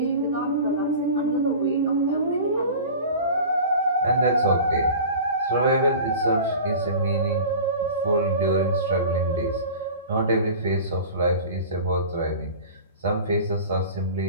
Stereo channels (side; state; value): both; inverted; correlation -0.37